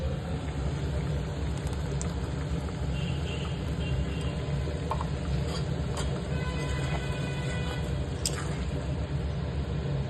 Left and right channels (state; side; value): identical; both; correlation 1.00